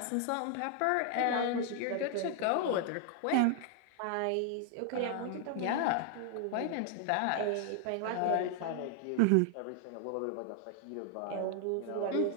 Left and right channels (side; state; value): both; different; correlation 0.00